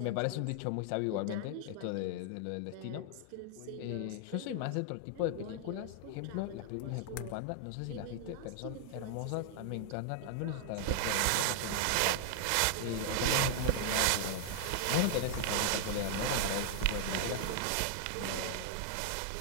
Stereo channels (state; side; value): different; both; correlation 0.00